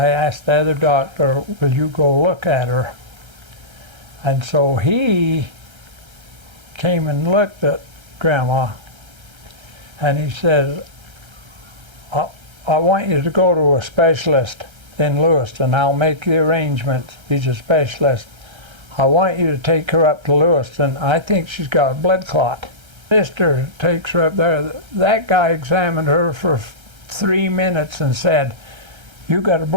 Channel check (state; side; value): late; left; 1.3 ms